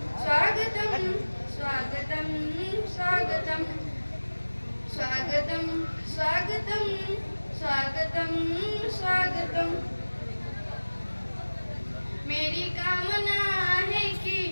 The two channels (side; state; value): both; inverted; correlation -1.00